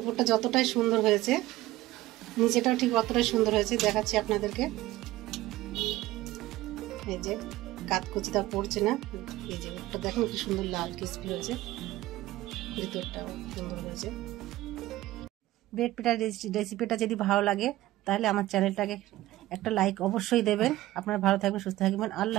যতটাই সুন্দর হয়েছে, নিচেটাও ঠিক অতটাই সুন্দর হয়েছে, দেখাচ্ছি আপনাদেরকে। এই যে কাতকুচিটা পড়ছে না, এই যে ওটা দেখুন কি সুন্দর লাল ক্রিসপি হয়েছে, ভিতরটাও সুন্দর হয়েছে। ব্রেড পিঠার রেসিপিটা যদি ভালো লাগে তাহলে আমার চ্যানেলটাকে একটা লাইক অবশ্যই দেবেন। আপনারা ভালো থাকবেন, সুস্থ থাকবেন।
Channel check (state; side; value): quieter; left; 16.5 dB